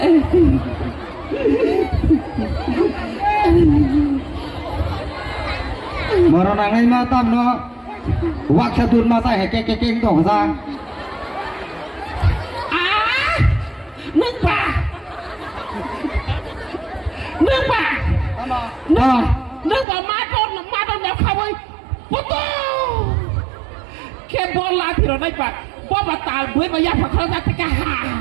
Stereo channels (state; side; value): drops out; left; at 19.9 s